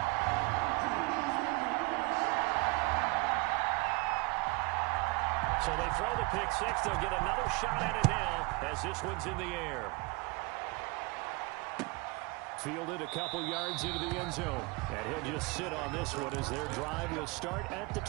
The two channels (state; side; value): quieter; left; 26.5 dB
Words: So they throw the pick 6. They'll get another shot at it now as this one's in the air. Fielded a couple yards into the end zone. And he'll just sit on this one as their drive will start at the